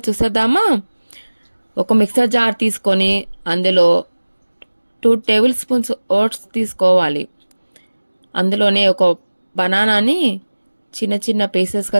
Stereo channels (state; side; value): inverted; both; correlation -1.00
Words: చూసేద్దామా? ఒక మిక్సర్ జార్ తీసుకొని అందులో 2 టేబుల్ స్పూన్స్ ఓట్స్ తీసుకోవాలి. అందులోనే ఒక బనానాని చిన్న చిన్న